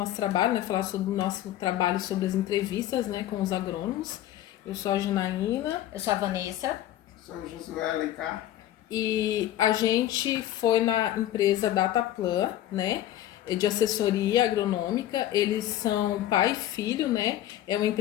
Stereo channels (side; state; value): right; quieter; 13.0 dB